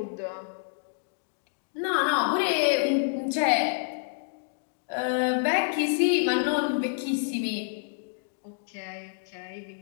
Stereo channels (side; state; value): right; silent; digital silence